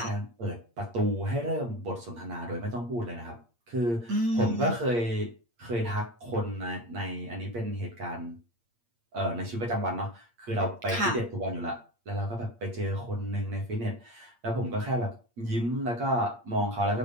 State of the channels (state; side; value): late; left; 8.6 ms